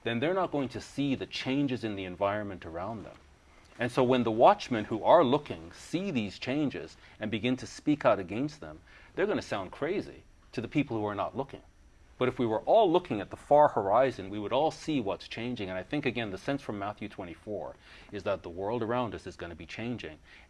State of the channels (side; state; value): both; identical; correlation 1.00